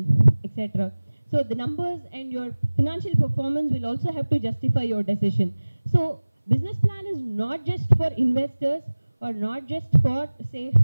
etc. So the numbers and your financial performance will also have to justify your decision. So business plan is not just for investors or not just for, say,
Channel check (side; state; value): both; inverted; correlation -1.00